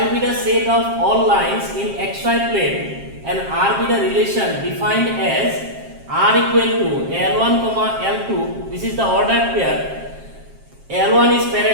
be the set of all lines in xy plane and R be the relation defined as R equal to L1 comma L2. This is the ordered pair. L1 is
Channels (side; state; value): left; late; 7.5 ms